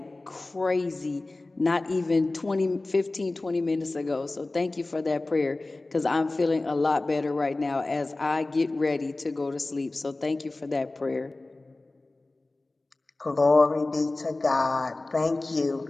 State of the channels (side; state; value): right; quieter; 3.0 dB